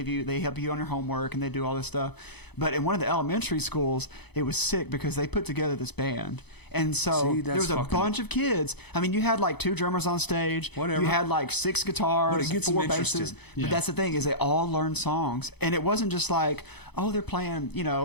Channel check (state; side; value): late; right; 0.98 ms